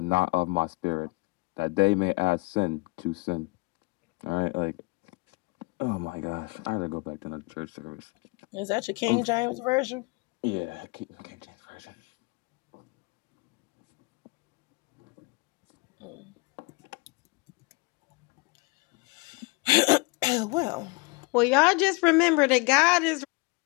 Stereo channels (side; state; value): right; quieter; 27.1 dB